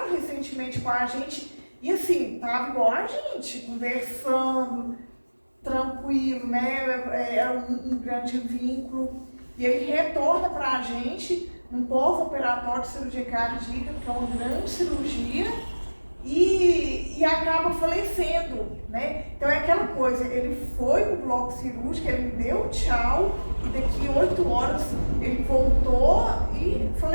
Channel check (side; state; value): both; inverted; correlation -1.00